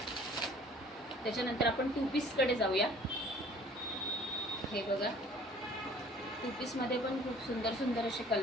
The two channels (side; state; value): both; normal; correlation 0.52